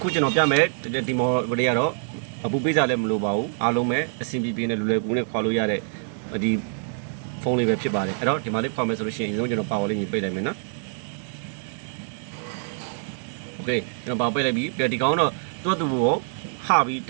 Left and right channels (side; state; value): left; silent; digital silence